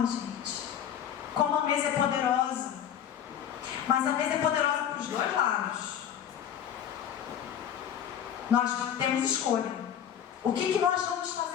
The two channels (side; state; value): right; quieter; 9.5 dB